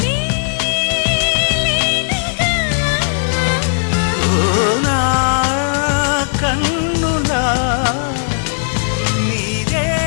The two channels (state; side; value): silent; right; 66 dB below the other